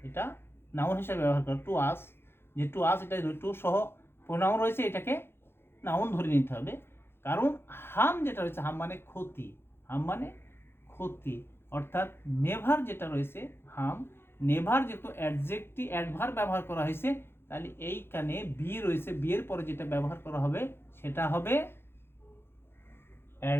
এটা নাউন হিসেবে ব্যবহার করে। টু আস, যে টু আস, এটা টু সহ প্রোনাউন রয়েছে, এটাকে নাউন ধরে নিতে হবে। কারণ হাম যেটা রয়েছে, হাম মানে ক্ষতি, হাম মানে ক্ষতি, অর্থাৎ নেভার যেটা রয়েছে হাম, নেভার যেহেতু অ্যাডজেক্টিভ অ্যাডভার্ব ব্যবহার করা হয়েছে, তাহলে এইখানে বি রয়েছে, বি এর পরে যেটা ব্যবহার করা হবে সেটা হবে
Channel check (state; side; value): late; right; 0.11 ms